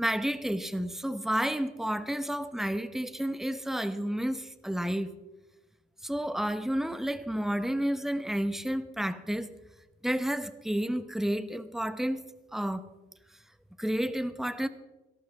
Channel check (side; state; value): both; normal; correlation 0.96